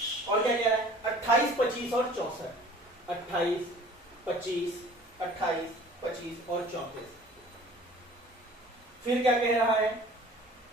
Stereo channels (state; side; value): normal; both; correlation 0.48